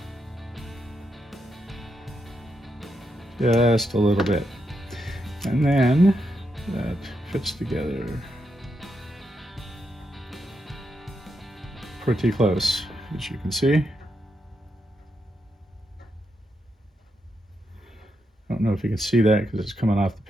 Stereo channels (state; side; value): normal; both; correlation 0.83